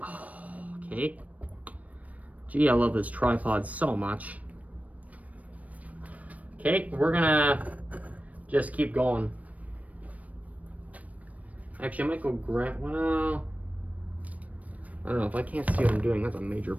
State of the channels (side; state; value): left; late; 0.070 ms